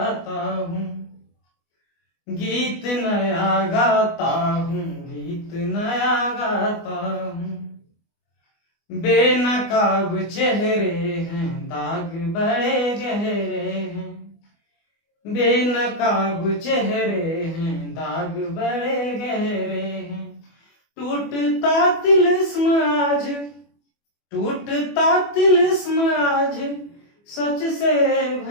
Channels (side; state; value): right; late; 24 ms